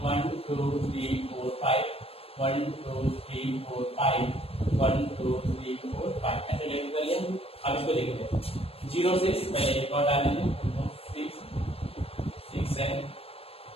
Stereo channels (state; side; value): late; right; 0.28 ms